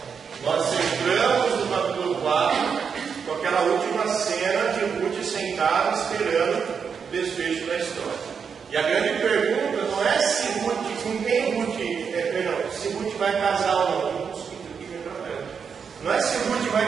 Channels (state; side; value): quieter; left; 6.4 dB